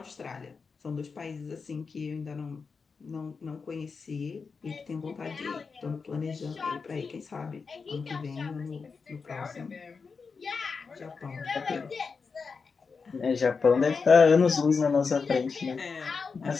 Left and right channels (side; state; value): right; quieter; 5.1 dB